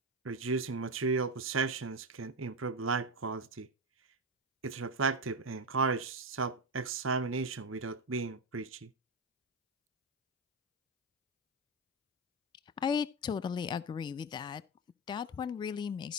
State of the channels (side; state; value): both; normal; correlation 0.12